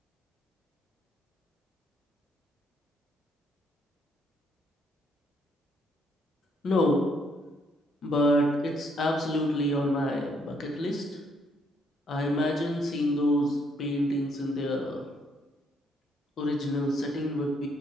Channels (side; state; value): both; normal; correlation 0.71